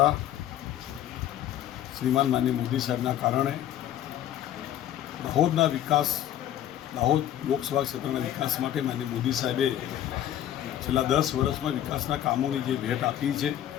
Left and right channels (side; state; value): right; quieter; 11.7 dB